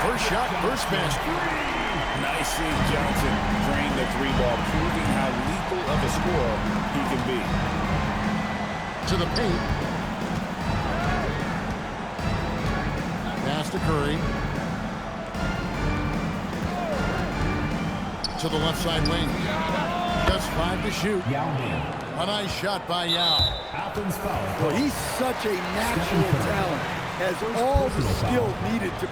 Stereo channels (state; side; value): identical; both; correlation 1.00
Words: First shot, first basket. Nice seeing Johnson drain the three ball, proving how lethal of a scorer he can be. To the paint. Pass to Curry. To the left side wing. Just 5 to shoot. A nice shot by Yao. Well, he's such a natural talent. Has all the skill needed to